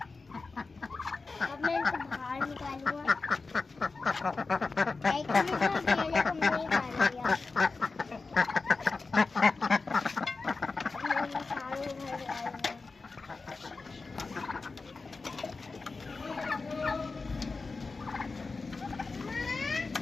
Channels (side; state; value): right; quieter; 4.0 dB